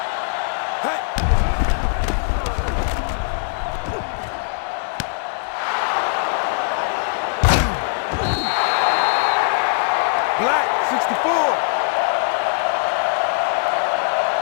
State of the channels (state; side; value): silent; right; 65 dB below the other